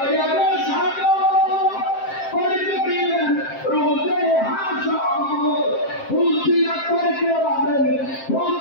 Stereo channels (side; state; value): right; late; 7.6 ms